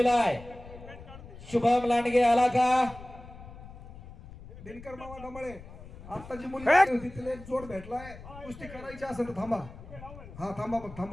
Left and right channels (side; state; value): left; noise; rumble, 16 dB below the sound